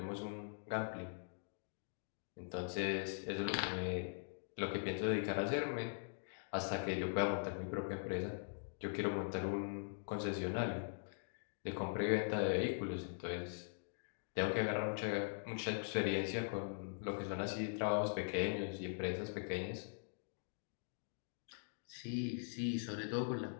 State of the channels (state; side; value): silent; right; digital silence